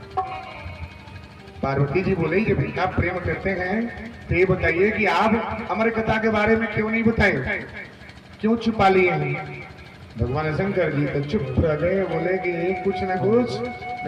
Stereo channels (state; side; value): identical; both; correlation 1.00